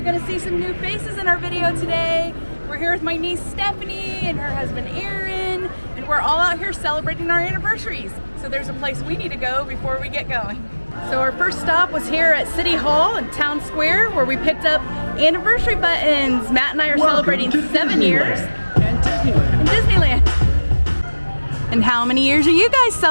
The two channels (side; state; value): both; inverted; correlation -1.00